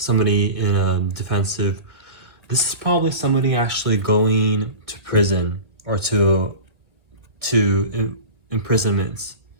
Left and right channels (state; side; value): late; left; 1.8 ms